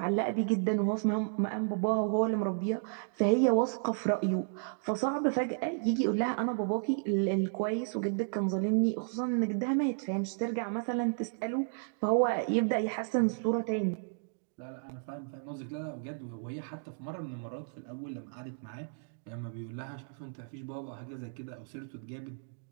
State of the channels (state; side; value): silent; left; digital silence